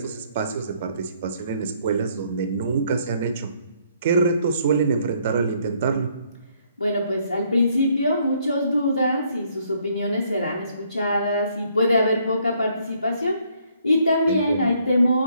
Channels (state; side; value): inverted; both; correlation -0.67